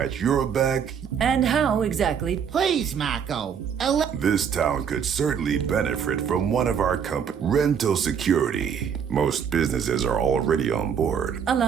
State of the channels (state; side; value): quieter; left; 7.5 dB